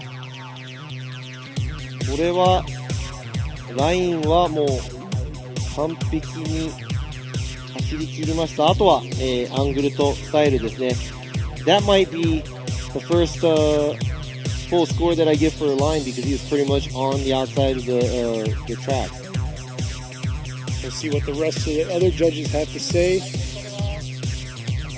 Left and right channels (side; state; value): both; identical; correlation 1.00